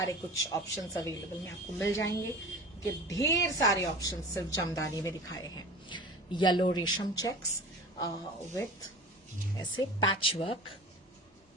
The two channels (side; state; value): both; normal; correlation 0.37